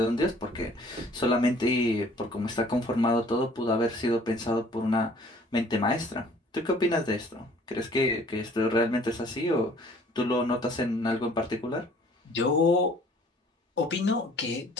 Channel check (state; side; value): normal; both; correlation 0.55